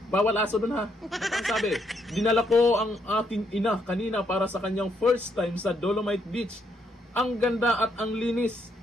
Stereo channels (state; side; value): normal; both; correlation 0.74